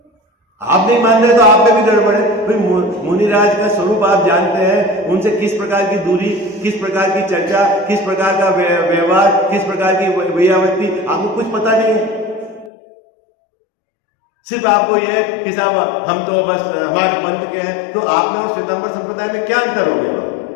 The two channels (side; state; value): right; drops out; at 12.7 s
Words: आप नहीं मान रहे तो आप में भी गड़बड़ है। भाई मुनिराज का स्वरूप आप जानते हैं, उनसे किस प्रकार की दूरी, किस प्रकार की चर्चा, किस प्रकार का व्यवहार, किस प्रकार की व्यावृत्ति, आपको कुछ पता नहीं है। सिर्फ आपको ये कि साहब हम तो बस हमारे पंथ के हैं। तो आप में और श्वेतांबर संप्रदाय में क्या अंतर हो गया?